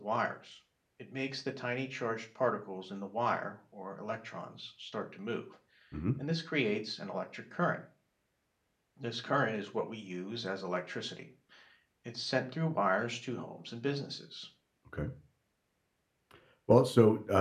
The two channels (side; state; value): both; identical; correlation 1.00